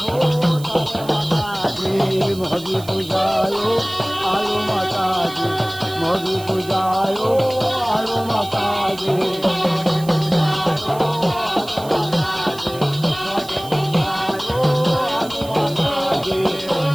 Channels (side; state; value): right; noise; hiss, 18 dB below the sound